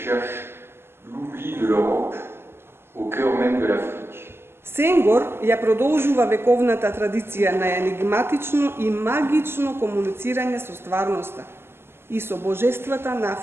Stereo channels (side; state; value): left; late; 0.12 ms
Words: l'oubli de l'Europe au cœur même de l'Afrique. Senghор ја продолжува вековната традиција на енигматично и магично комуницирање со стварноста и со божествата на